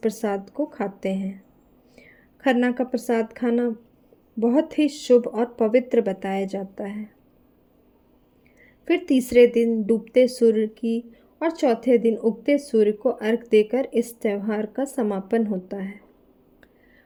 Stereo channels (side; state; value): both; identical; correlation 1.00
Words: को खाते हैं। खरना का प्रसाद खाना बहुत ही शुभ और पवित्र बताया जाता है। फिर तीसरे दिन डूबते सूर्य की और चौथे दिन उगते सूर्य को अर्घ देकर इस त्यौहार का समापन होता है।